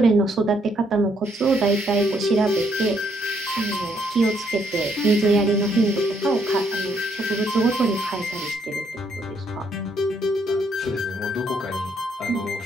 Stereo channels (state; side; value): normal; both; correlation 0.71